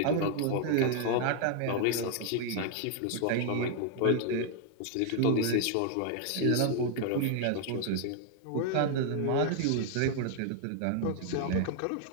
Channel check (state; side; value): different; both; correlation 0.00